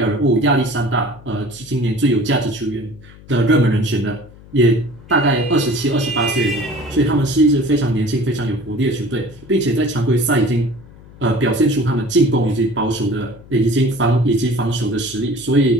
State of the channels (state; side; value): noise; left; hum, 21 dB below the sound